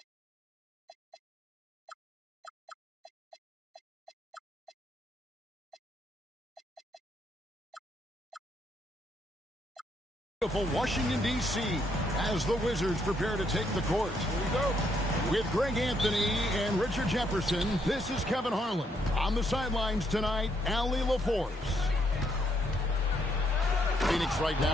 Washington, D.C. as the Wizards prepare to take the court. Here we go. With Greg Anthony and Richard Jefferson, this is Kevin Harlan. On the sidelines tonight, Allie LaForce. Phoenix right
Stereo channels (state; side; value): normal; both; correlation 0.73